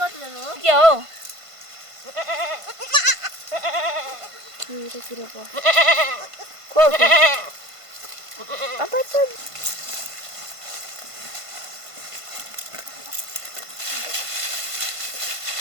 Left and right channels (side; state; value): left; late; 1.5 ms